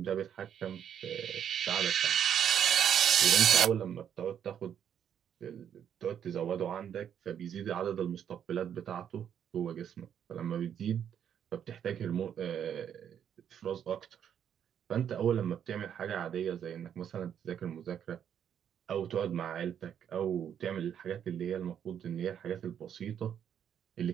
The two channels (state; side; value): quieter; left; 8.9 dB